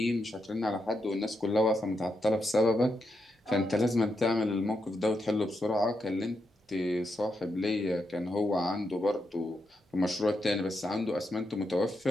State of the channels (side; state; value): both; normal; correlation 0.83